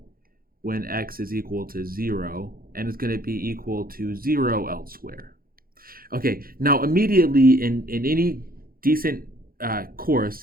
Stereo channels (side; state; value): left; late; 0.42 ms